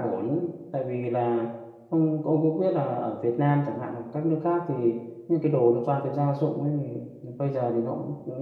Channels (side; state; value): both; identical; correlation 1.00